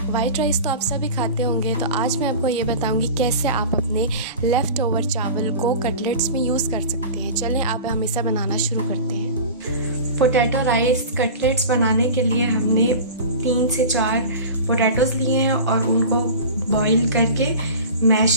White rice तो आप सभी खाते होंगे, तो आज मैं आपको ये बताऊंगी कैसे आप अपने लेफ़्ट ओवर चावल को कटलेट्स में यूज़ कर सकते हैं। चलें आप हम इसे बनाना शुरू करते हैं। पोटैटो राइस कटलेट्स बनाने के लिए हमने 3 से 4 पोटैटोज़ लिए हैं और उनको बॉईल करके मैश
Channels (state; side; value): inverted; both; correlation -0.34